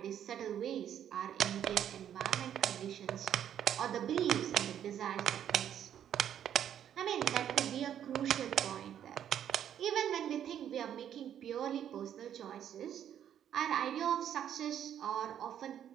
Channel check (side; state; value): left; quieter; 9.9 dB